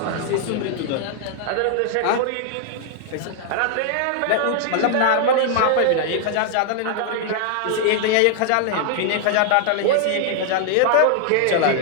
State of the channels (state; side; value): different; both; correlation 0.00